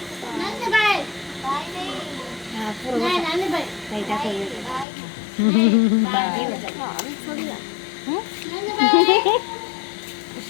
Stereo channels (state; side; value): drops out; right; at 4.9 s